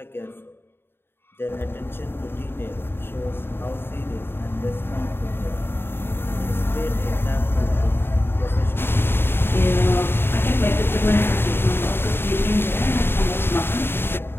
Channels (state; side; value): late; right; 0.11 ms